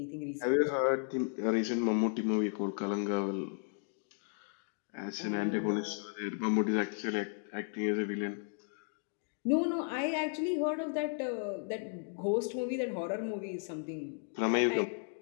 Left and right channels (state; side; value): silent; right; 55 dB below the other